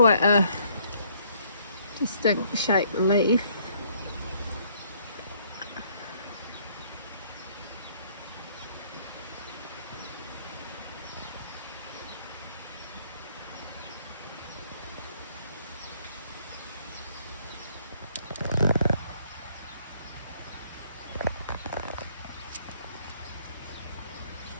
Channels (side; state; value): both; inverted; correlation -0.64